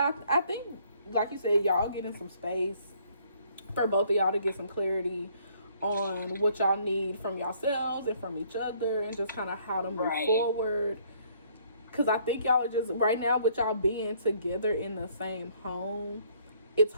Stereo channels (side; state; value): both; inverted; correlation -0.63